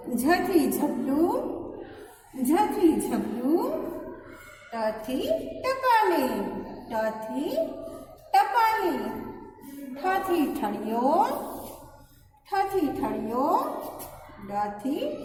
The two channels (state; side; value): identical; both; correlation 1.00